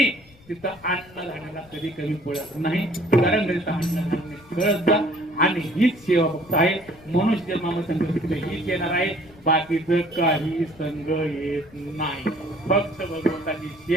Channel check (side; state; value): left; noise; rumble, 25 dB below the sound